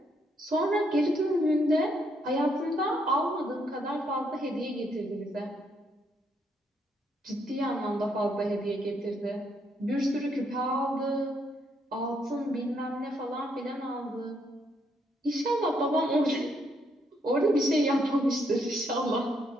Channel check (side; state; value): both; normal; correlation 0.74